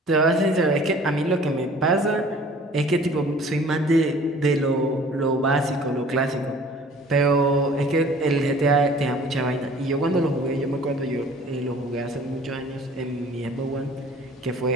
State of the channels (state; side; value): normal; both; correlation 0.50